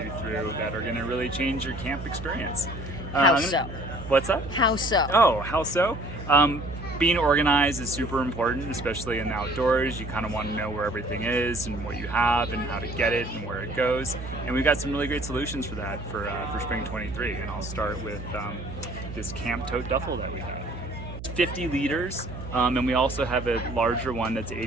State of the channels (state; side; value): noise; right; hum, 10 dB below the sound